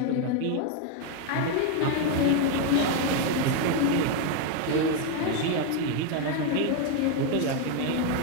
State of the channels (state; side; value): different; both; correlation 0.01